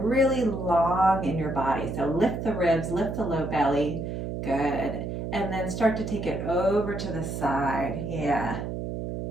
really long in your body. So lift the ribs, lift the low belly. Good. And then start to take it over to the side. Yeah.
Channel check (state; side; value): noise; right; hum, 5 dB below the sound